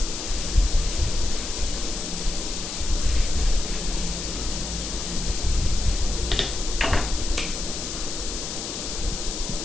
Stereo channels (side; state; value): left; noise; hiss, 6 dB below the sound